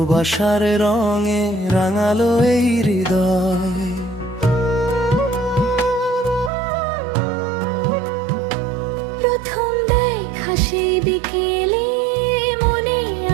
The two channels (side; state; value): left; drops out; at 6.5 s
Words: রঙে রাঙালো এই হৃদয়। প্রথম দেখা সেই বিকেলে মনে